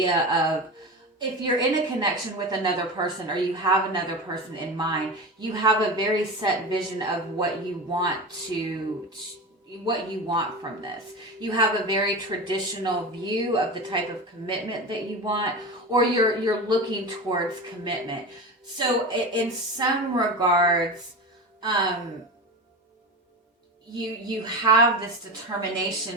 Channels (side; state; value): both; normal; correlation 0.25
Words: of, if you're in a connection with another person or you have another person in mind, you have a very set vision of what you want from this. You have a very traditional view of the type of commitment that you want, or you're looking towards commitment. So in some regards, you have this